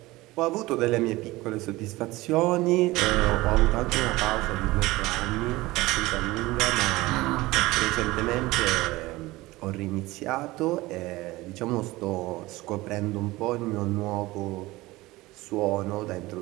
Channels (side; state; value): left; quieter; 19.6 dB